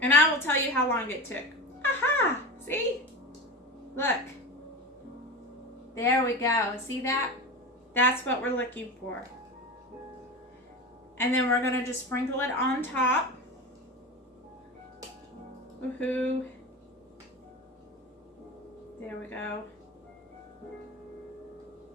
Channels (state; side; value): normal; both; correlation 0.26